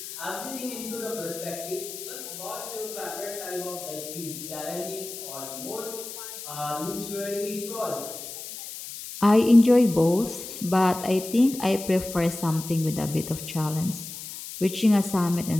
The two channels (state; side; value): noise; left; hiss, 10 dB below the sound